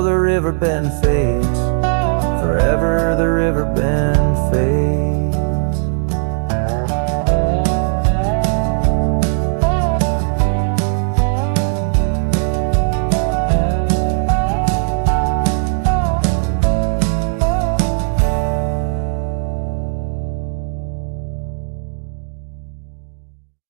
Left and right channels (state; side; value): silent; left; digital silence